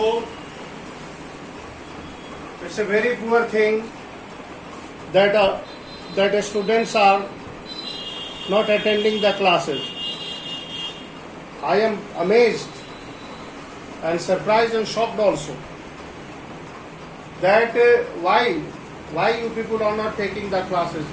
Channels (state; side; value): identical; both; correlation 1.00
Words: it's a very poor thing that students are not attending the classes. I am amazed and surprised and shocked also that why you people are not taking the classes